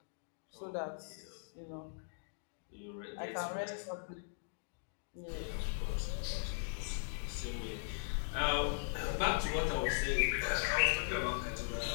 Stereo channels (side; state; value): right; silent; digital silence